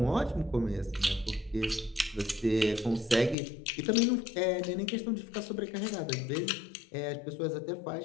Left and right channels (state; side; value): drops out; right; at 3.4 s